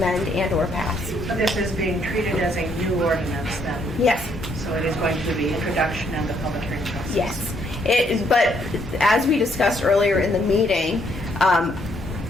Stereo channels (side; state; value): both; normal; correlation 0.70